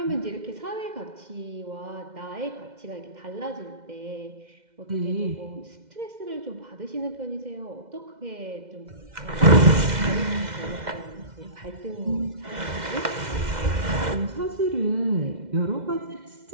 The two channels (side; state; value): left; late; 2.1 ms